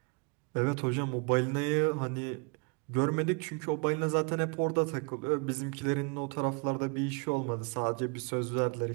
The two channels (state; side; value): quieter; left; 33.6 dB